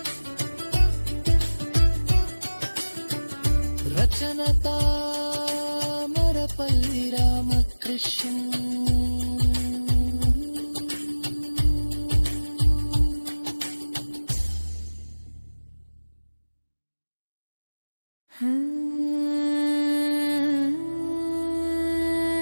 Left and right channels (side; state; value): both; inverted; correlation -1.00